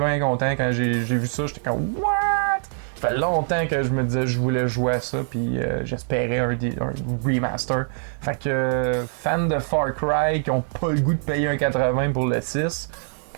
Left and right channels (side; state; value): left; silent; 63 dB below the other